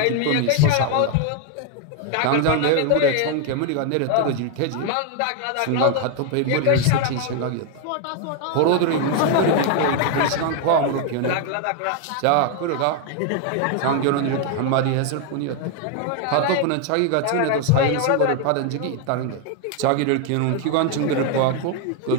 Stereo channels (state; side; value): different; both; correlation 0.01